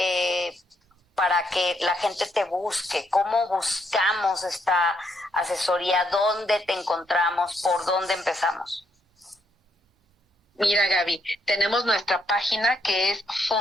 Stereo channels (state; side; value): normal; both; correlation 0.75